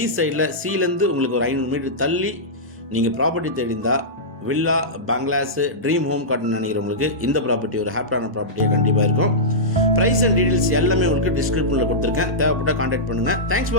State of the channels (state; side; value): normal; both; correlation -0.14